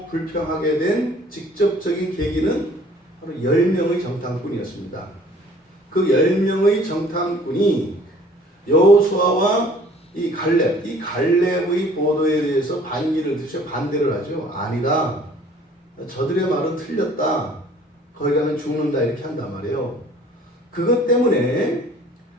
불평하게 된 직접적인 계기는 바로 10명의 정탐꾼이었습니다. 그 10명의 정탐꾼이 여호수아와 이 갈렙의 보도에 대해서 반기를 드셔 반대를 하죠. 아니다. 저들의 말은 틀렸다. 거기 가면 죽는다 이렇게 한단 말이에요. 그것 때문에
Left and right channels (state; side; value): normal; both; correlation 0.54